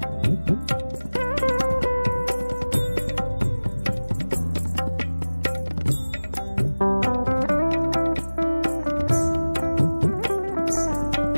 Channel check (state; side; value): inverted; both; correlation -1.00